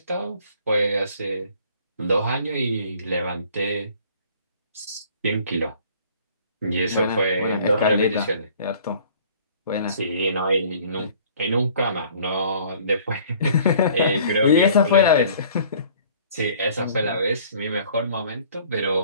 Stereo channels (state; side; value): inverted; both; correlation -0.54